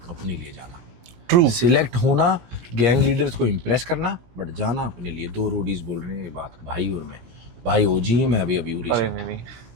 अपने लिए जाना। ट्रू। सिलेक्ट होना, गैंग लीडर्स को इम्प्रेस करना, बट जाना अपने लिए। दो रोडीज बोल रहे हैं ये बात, भाई और मैं। भाई ओजी है, मैं अभी उरी अरे से। नहीं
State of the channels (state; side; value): late; left; 17 ms